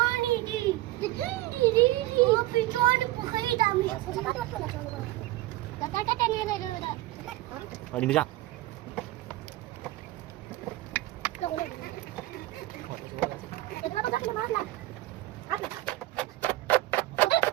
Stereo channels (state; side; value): quieter; left; 17.4 dB